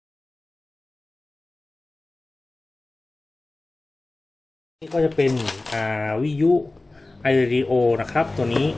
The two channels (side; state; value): right; quieter; 3.0 dB